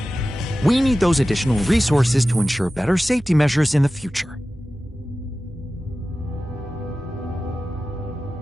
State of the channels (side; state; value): both; normal; correlation 0.95